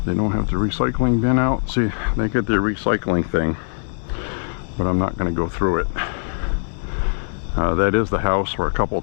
They don't have the recycling bin out. See, they get their recycling thing, but I'm not going to go through it. That is the house where a couple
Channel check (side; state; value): right; silent; 65 dB below the other